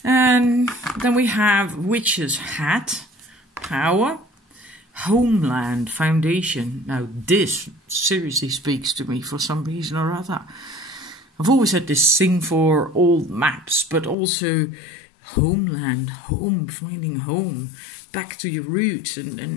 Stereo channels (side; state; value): right; drops out; at 14.2 s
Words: And then we have Witch's Hat, Power, Homeland, Foundation. Now this seriously speaks to me for some reason or other. I've always had this thing for old maps, but also homeland, home, finding home, back to your roots,